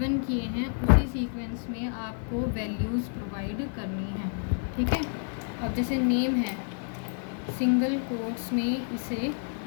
किए हैं उसी सीक्वेंस में आपको वैल्यूज़ प्रोवाइड करनी है, ठीक है। अब जैसे नेम है, सिंगल कोट्स में इसे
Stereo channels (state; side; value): silent; right; 57 dB below the other